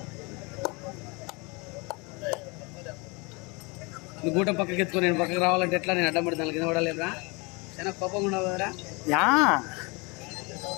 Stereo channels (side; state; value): right; quieter; 28.3 dB